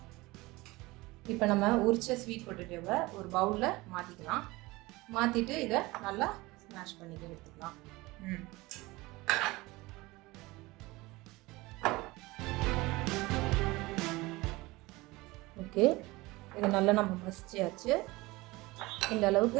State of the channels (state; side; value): quieter; left; 21.3 dB